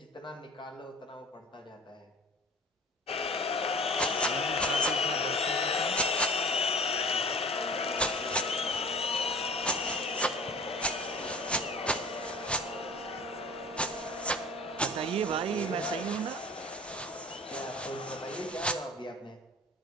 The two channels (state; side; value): normal; both; correlation 0.42